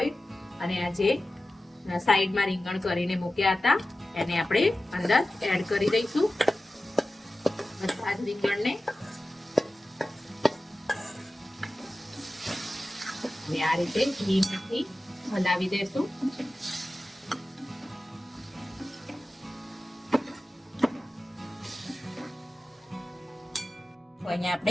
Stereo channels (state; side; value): normal; both; correlation 0.95